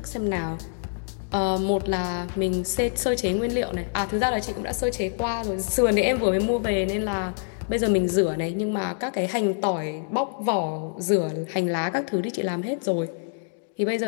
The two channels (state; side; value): silent; right; digital silence